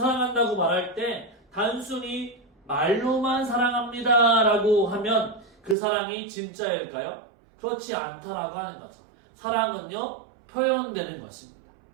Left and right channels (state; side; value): drops out; left; at 5.8 s